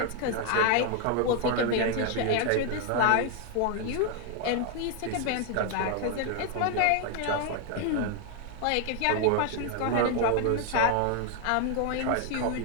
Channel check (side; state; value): both; different; correlation 0.00